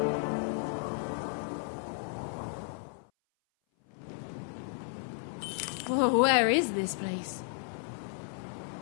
Oh, where is this place?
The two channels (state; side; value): silent; right; 56 dB below the other